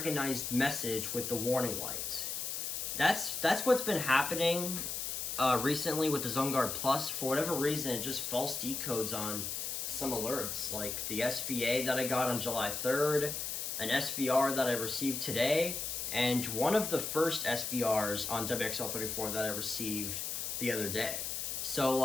message with the warning light. That's what's been happening recently with the Zoneguard Plus. For whatever reason, it just false decodes on some alerts, like the SVA that I got on July 3rd, an SVR that I received today, and one of the first SVRs on WXL34 that I received the other day. So,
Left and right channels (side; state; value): left; noise; hiss, 3 dB below the sound